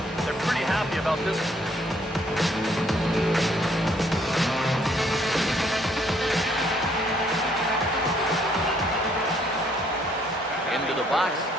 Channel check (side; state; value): both; normal; correlation 0.66